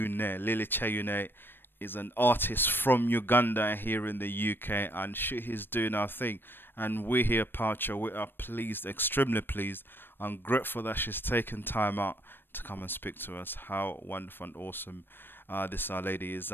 Lily Kyeyune is an artist from Uganda here in the UK, and she is doing our thing. And we here at Poucher, we are pleased, extremely pleased, and grateful that she's taken time out to come and speak to us. How wonderful and awesome this our lady is.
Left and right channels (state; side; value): late; right; 0.098 ms